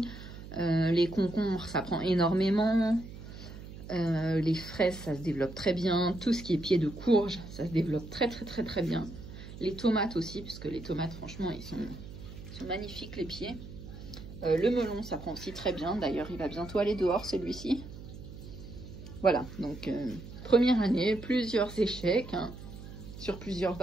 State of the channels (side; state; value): right; noise; hum, 13 dB below the sound